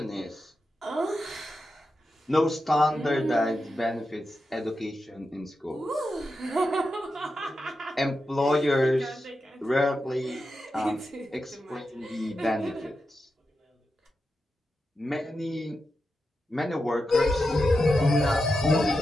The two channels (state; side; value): normal; both; correlation 0.89